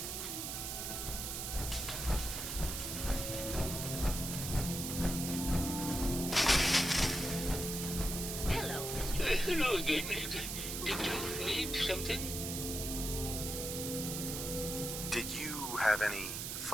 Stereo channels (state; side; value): noise; right; hiss, 4 dB below the sound